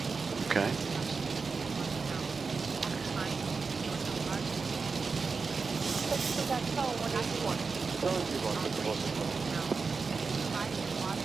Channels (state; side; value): quieter; left; 4.7 dB